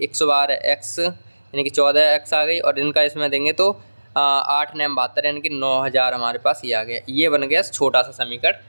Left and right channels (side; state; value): both; inverted; correlation -1.00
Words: 112x, यानी कि 14x आ गई, और इनका इसमें देंगे तो 8 9 72, यानी कि 9000 हमारे पास ये आ गया। ये बन गया छोटा सा समीकरण